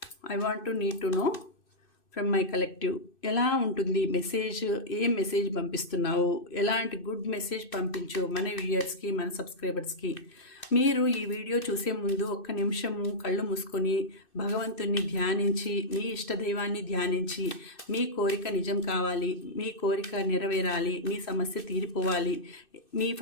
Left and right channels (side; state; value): right; late; 2.6 ms